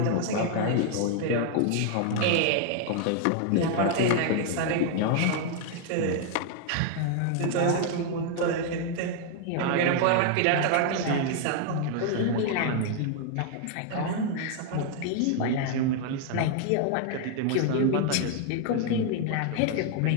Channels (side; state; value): both; different; correlation 0.00